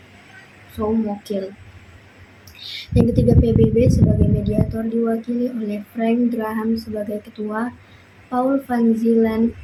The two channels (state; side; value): identical; both; correlation 1.00